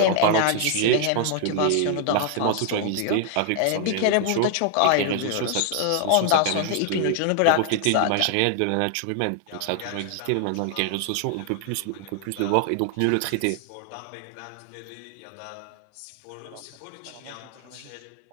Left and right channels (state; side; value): different; both; correlation 0.00